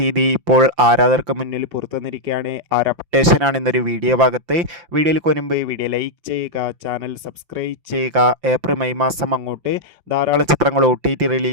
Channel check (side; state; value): left; late; 5.8 ms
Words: ഇപ്പോൾ ആരാധകർക്ക് മുന്നിൽ പുറത്തുവന്നിരിക്കുകയാണ്. ആ ഒരു അപ്ഡേഷനാണ് ഇന്നൊരു വീഡിയോ ഭാഗത്ത്. വീഡിയോയിൽ കൊനുമ്പ് വീഡിയോ ലൈക്ക് ചെയ്യുക, ചാനൽ സബ്സ്ക്രൈബ് ചെയ്യുക. ഏപ്രിൽ മെയ് മാസം അങ്ങോട്ട് ധാരാളം ചിത്രങ്ങൾ OTT